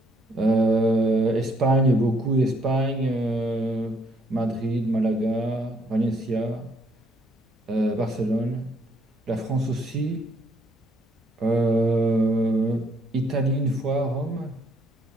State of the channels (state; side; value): normal; both; correlation 0.68